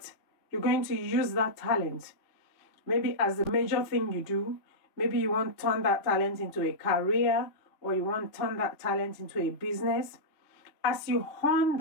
you're going to use that talent, maybe as the major thing you do. Maybe you want to turn that talent into a career, or you want to turn that talent into a business. As you hone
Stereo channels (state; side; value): late; right; 3.4 ms